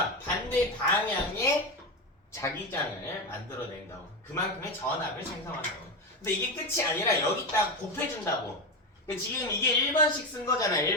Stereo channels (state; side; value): normal; both; correlation 0.15